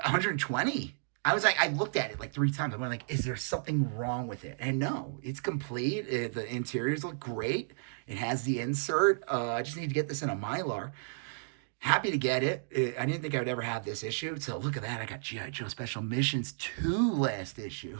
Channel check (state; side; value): silent; left; digital silence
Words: I was like, I looked at it like 3 times. I went like, is there something wrong with it? And no, it's complete. The interiors look great. It has the insert. I just need to get this in a Mylar. Happy to get it. I didn't think I would ever have this issue. So look at that. I got G.I. Joe Special Missions 2 last issue.